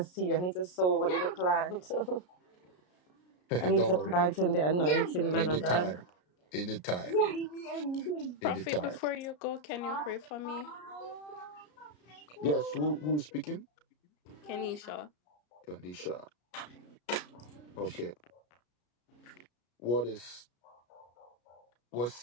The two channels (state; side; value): late; right; 33 ms